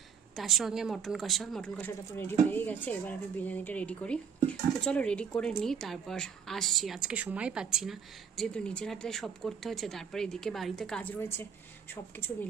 তার সঙ্গে মটন কষাটা তো রেডি হয়ে গেছে। এবার আমি বিরিয়ানিটা রেডি করি। তো চলো রেডি করে নিই, তারপর আসছি। আজকে সময় পাচ্ছি না, যেহেতু নিজের হাতে সব করতে হচ্ছে, তারপরে এদিকে বাড়িতে কাজ রয়েছে, সব কিছু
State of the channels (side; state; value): left; quieter; 6.8 dB